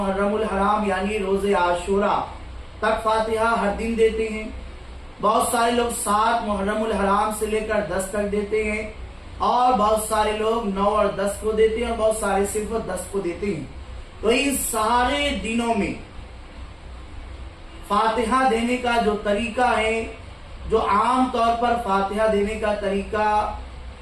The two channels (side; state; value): both; identical; correlation 1.00